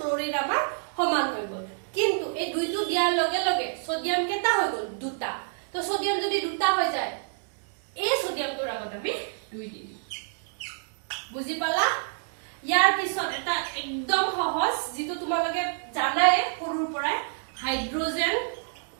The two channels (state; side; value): silent; left; digital silence